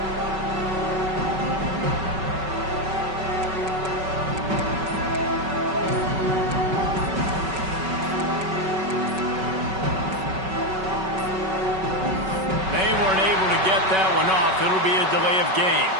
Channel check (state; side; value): late; left; 5.3 ms